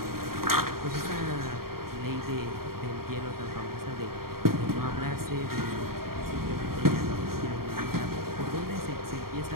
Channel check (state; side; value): late; left; 0.93 ms